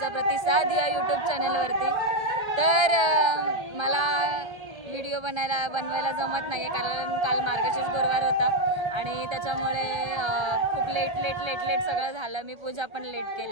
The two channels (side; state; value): left; late; 1.5 ms